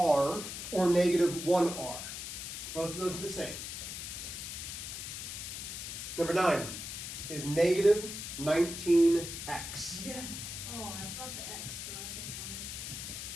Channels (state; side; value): noise; left; hiss, 7 dB below the sound